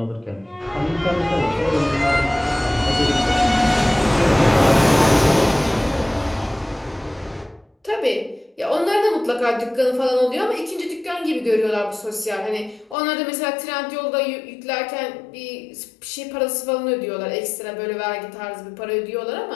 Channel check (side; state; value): right; drops out; at 13.0 s